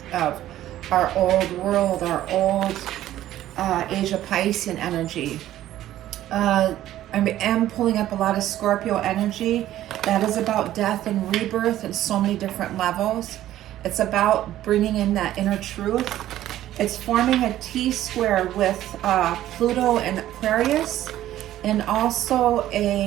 of our old world, our old Asia Piscean energy. I am pulling up a lot of Scorpio energy that is about death and rebirth in so many different levels. It's about bringing in that inner truth. It's forming a T-square with Pluto and Aquarius, and also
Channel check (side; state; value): left; quieter; 13.4 dB